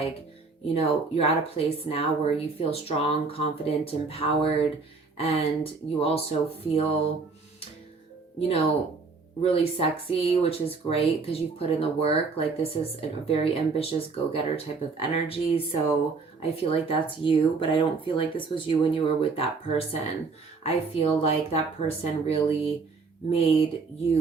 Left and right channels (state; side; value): quieter; left; 4.4 dB